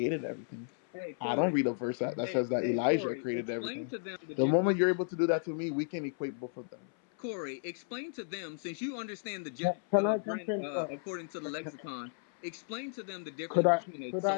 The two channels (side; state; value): right; silent; 55 dB below the other